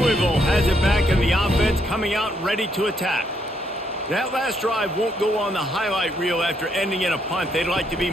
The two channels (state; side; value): normal; both; correlation 0.74